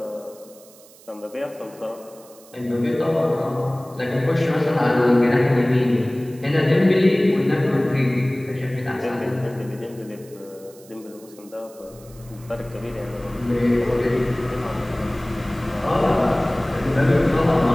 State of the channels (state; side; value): noise; right; hiss, 24 dB below the sound